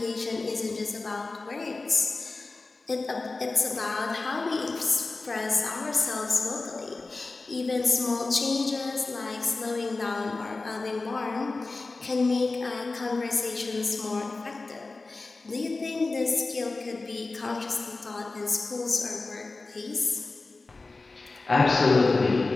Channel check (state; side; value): quieter; right; 3.5 dB